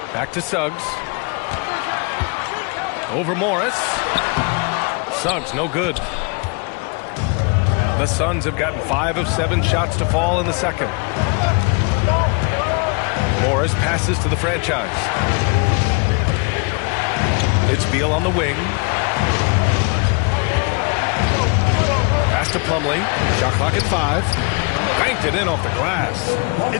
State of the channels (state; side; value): quieter; right; 32.5 dB